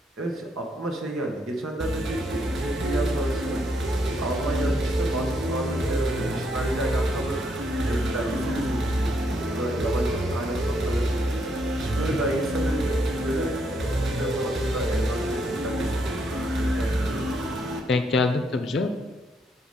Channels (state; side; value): normal; both; correlation 0.75